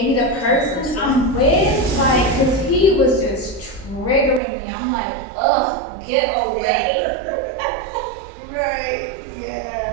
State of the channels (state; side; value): drops out; left; at 4.4 s